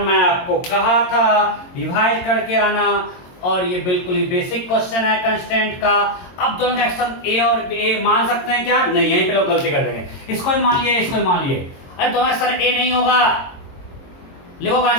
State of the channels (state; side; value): late; right; 22 ms